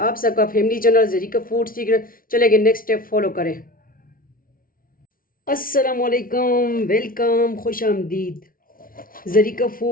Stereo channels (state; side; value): late; right; 0.42 ms